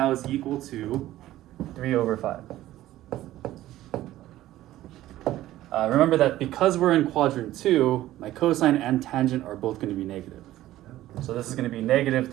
is equal to 3 over 5. Remember that because we're in quadrant 2, my cosine and tangent are both going to be negative. So this is going to be negative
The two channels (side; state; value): left; quieter; 14.7 dB